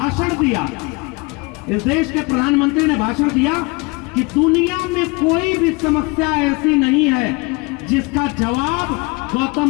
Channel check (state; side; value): quieter; right; 26.9 dB